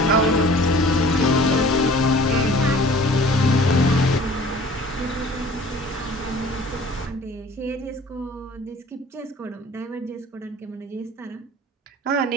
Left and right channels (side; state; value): both; normal; correlation 0.48